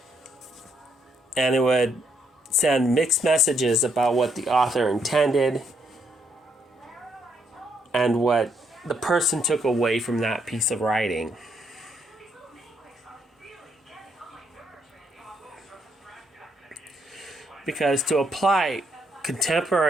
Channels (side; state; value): both; normal; correlation 0.74